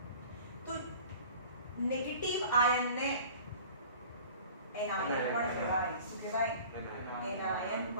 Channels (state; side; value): inverted; both; correlation -0.45